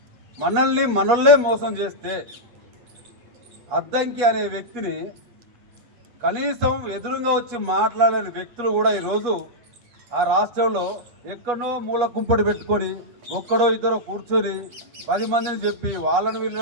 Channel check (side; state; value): left; late; 8.2 ms